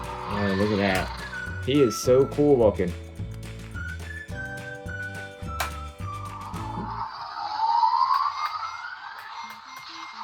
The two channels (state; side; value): identical; both; correlation 1.00